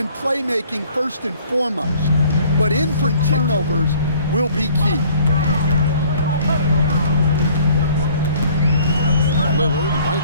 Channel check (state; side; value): inverted; both; correlation -0.55